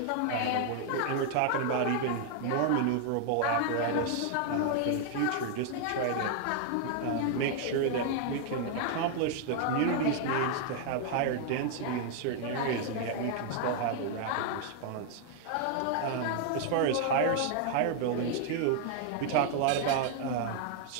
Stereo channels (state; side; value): different; both; correlation 0.00